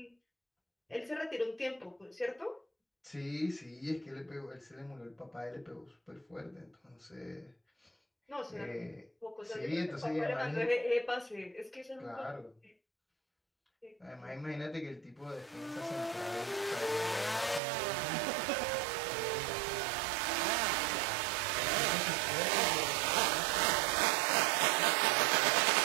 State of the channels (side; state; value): left; drops out; at 17.6 s